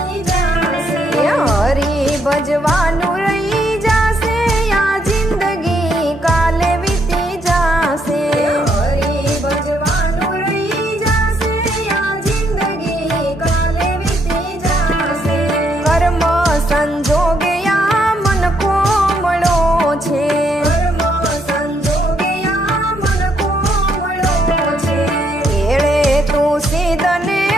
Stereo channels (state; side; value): normal; both; correlation 0.73